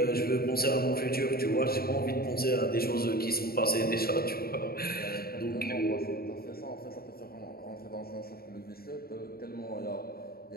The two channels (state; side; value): late; right; 0.44 ms